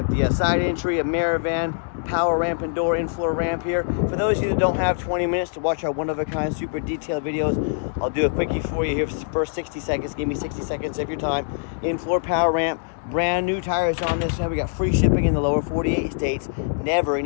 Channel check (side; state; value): right; silent; digital silence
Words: the side entry, a mirror van, power ramp and door, in-floor ramp here. For those of you that don't have 20 minutes to watch our one-of-a-kind super detailed videos, I'll do a quickie for you here for the first 60 seconds. Give me 60 seconds of your time. In-floor power ramp, brand new tires on this, and we got free shipping in the lower 48 states. Never